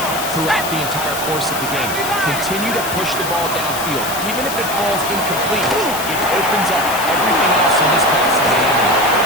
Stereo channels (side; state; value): left; noise; hiss, 7 dB below the sound